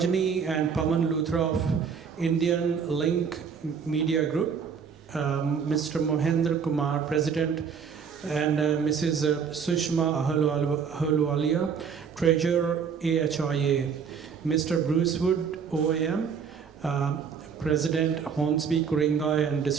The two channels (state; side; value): quieter; left; 6.6 dB